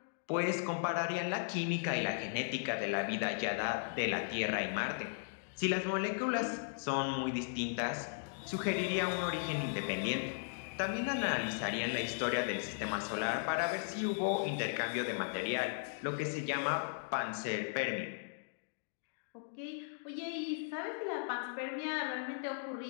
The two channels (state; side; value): silent; right; digital silence